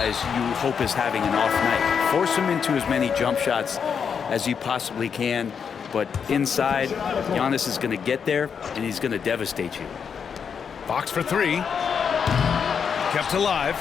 you hope is having an off night. Force him into as many jump shots as you possibly can. But inside, Giannis is going to get there, and he's going to devastate you. Fox for 3. Kept alive.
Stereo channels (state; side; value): quieter; right; 6.8 dB